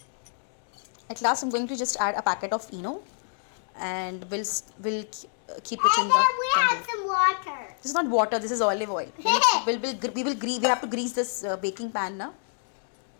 At last, I'm going to just add a packet of Eno, and we'll keep it in And the then we container. have some water. This is not water. This is olive oil. We have to grease this baking pan now.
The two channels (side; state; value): right; silent; digital silence